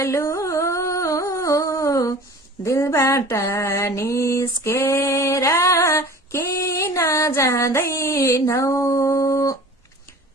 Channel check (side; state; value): both; normal; correlation 0.42